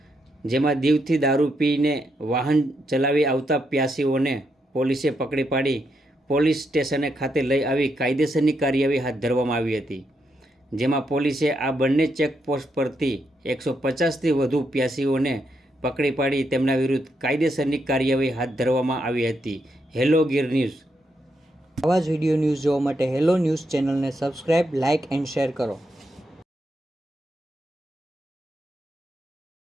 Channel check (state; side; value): normal; both; correlation 0.80